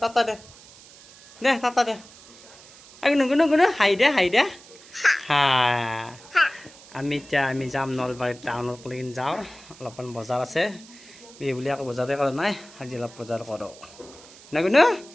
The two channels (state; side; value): noise; right; hiss, 21 dB below the sound